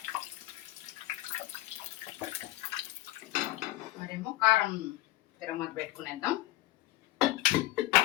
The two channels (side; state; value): right; quieter; 17.0 dB